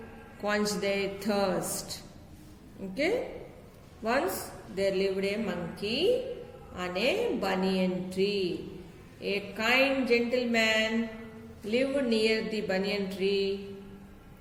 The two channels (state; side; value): identical; both; correlation 1.00